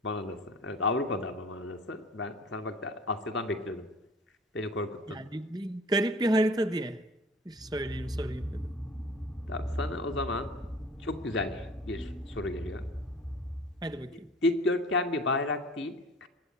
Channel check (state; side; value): normal; both; correlation 0.45